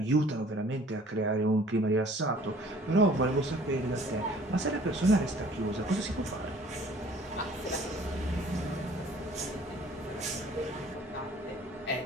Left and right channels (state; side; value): normal; both; correlation 0.52